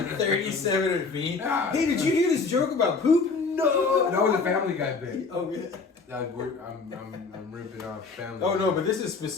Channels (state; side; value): quieter; right; 4.4 dB